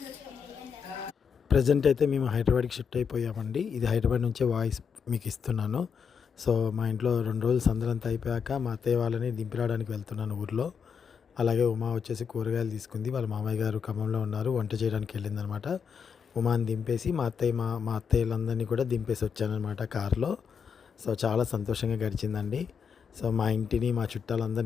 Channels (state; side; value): quieter; right; 6.6 dB